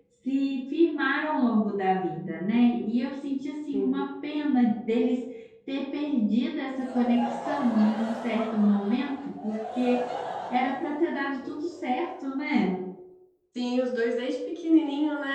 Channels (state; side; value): identical; both; correlation 1.00